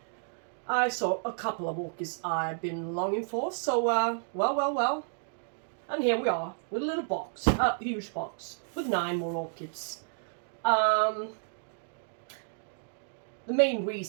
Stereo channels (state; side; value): silent; left; digital silence